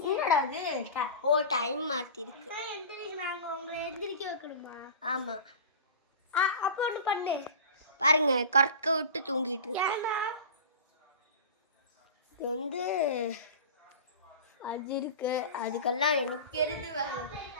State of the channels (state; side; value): inverted; both; correlation -0.33